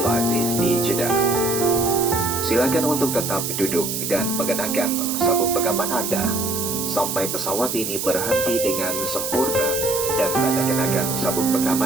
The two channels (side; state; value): right; noise; hiss, 3 dB below the sound